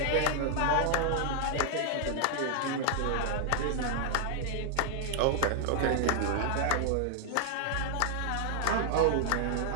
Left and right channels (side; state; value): both; different; correlation 0.00